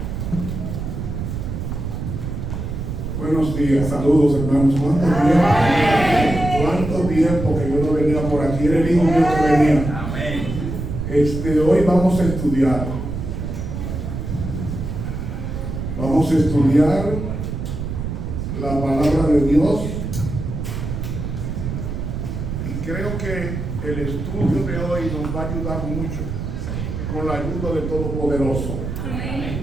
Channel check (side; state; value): right; noise; rumble, 5 dB below the sound